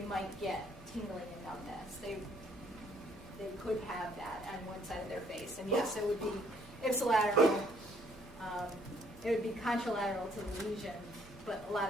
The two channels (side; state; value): both; normal; correlation 0.64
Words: might get tingling and numbness. They could have that on one side of their face. And yes, it would be ipsilateral, it would be contralateral to the lesion, but a lot